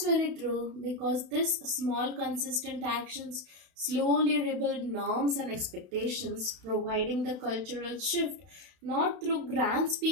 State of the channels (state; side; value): late; left; 32 ms